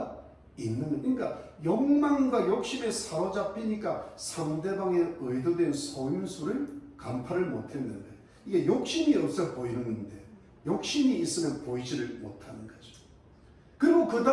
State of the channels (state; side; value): identical; both; correlation 1.00